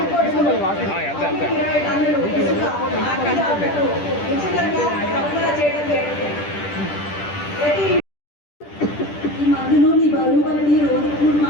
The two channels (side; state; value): right; late; 10 ms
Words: ఈ మందులు నీ బరువు బట్టి రోజు కూడా